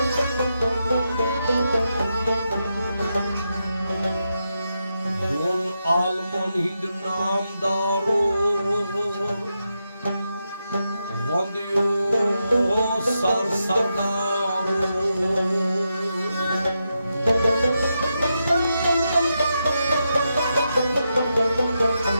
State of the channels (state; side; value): inverted; both; correlation -0.86